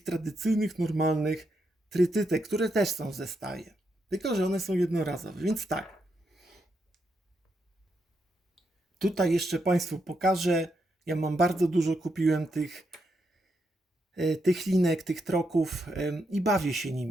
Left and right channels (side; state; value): both; normal; correlation 0.81